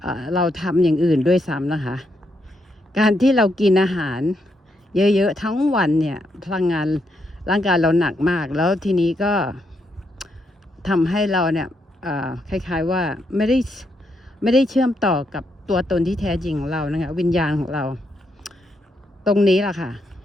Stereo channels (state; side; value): normal; both; correlation 0.79